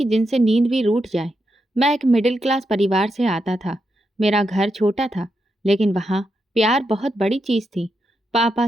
जिनसे नींद भी रूठ जाए। मैं एक मिडिल क्लास परिवार से आता था। मेरा घर छोटा था, लेकिन वहाँ प्यार बहुत बड़ी चीज़ थी। पापा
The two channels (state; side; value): normal; both; correlation 0.84